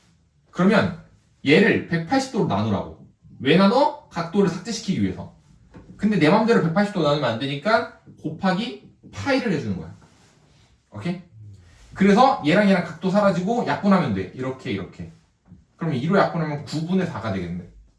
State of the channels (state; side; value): identical; both; correlation 1.00